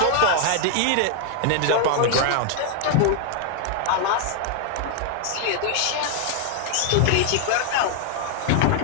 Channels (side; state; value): both; different; correlation 0.00